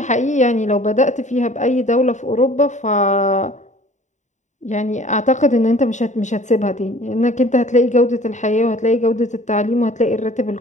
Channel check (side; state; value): right; late; 0.35 ms